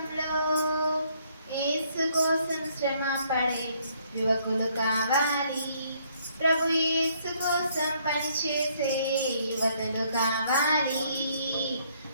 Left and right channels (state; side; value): inverted; both; correlation -0.67